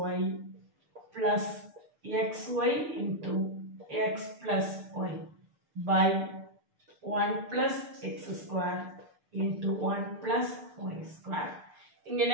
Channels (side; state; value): left; late; 6.7 ms